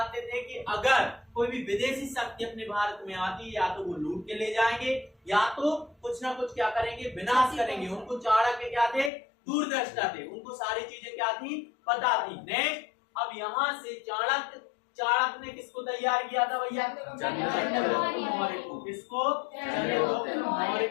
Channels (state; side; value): drops out; right; at 9.1 s